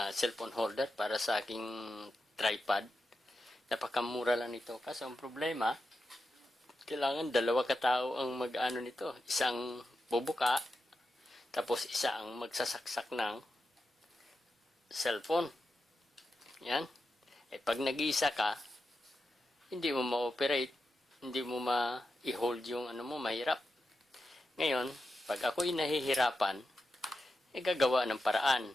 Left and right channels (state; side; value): normal; both; correlation 0.89